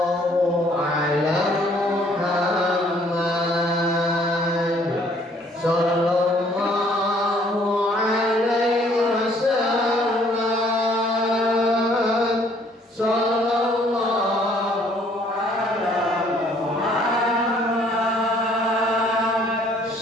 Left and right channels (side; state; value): both; normal; correlation 0.61